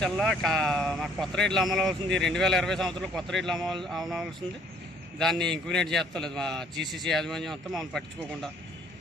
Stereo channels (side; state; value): both; normal; correlation 0.60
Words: మాకు కొత్త రేట్లు అమలు అవుతుంది. 2020 సంవత్సరంలో కొత్త రేట్లు అమలవలసింది. దాన్ని ఇంక్వినేట్ చేస్తలేదు మా జీసీసీ యాజమాన్యం అంతా మమ్మల్ని పట్టించుకోకుండా.